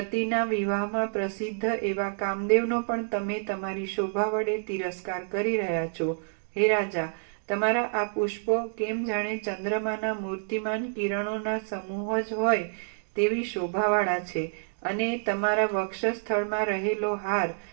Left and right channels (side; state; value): left; silent; digital silence